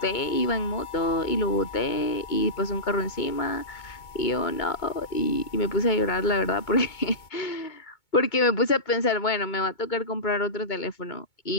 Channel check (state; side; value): late; right; 2.2 ms